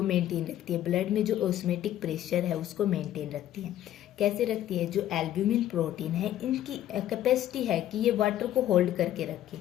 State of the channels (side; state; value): right; quieter; 12.4 dB